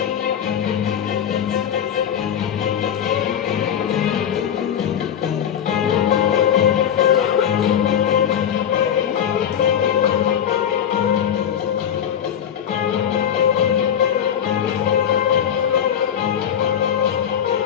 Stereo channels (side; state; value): right; quieter; 9.0 dB